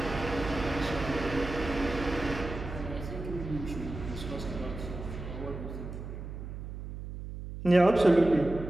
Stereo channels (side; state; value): right; noise; hum, 9 dB below the sound